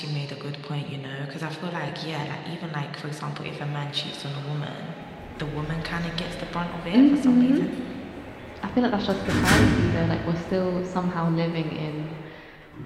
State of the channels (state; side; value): identical; both; correlation 1.00